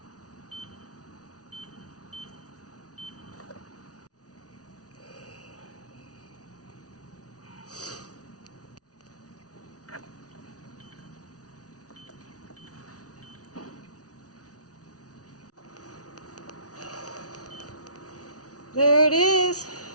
There it is.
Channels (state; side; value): late; right; 0.68 ms